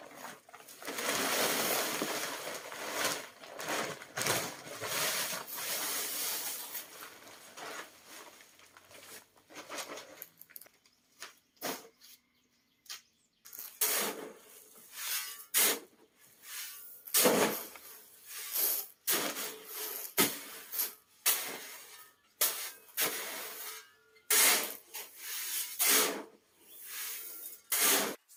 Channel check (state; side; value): identical; both; correlation 1.00